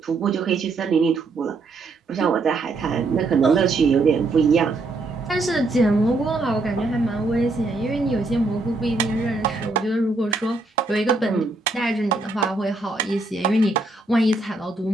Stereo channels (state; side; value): quieter; left; 3.3 dB